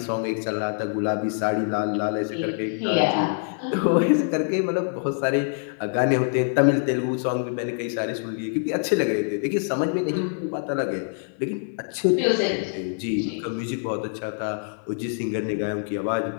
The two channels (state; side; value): silent; right; 60 dB below the other